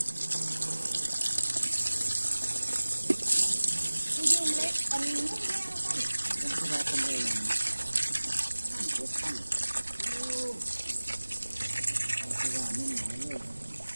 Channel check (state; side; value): inverted; both; correlation -1.00